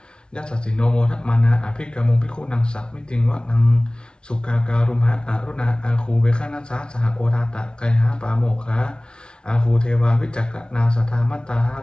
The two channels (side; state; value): right; late; 0.055 ms